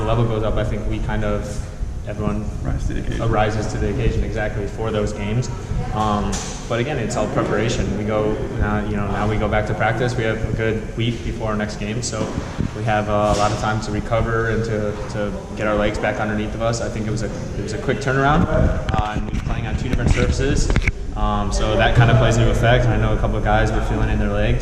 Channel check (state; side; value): identical; both; correlation 1.00